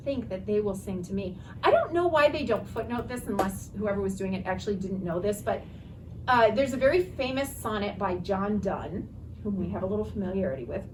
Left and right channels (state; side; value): identical; both; correlation 1.00